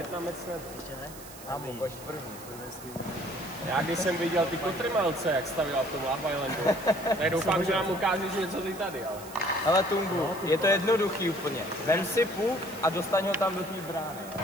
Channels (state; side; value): noise; right; hiss, 17 dB below the sound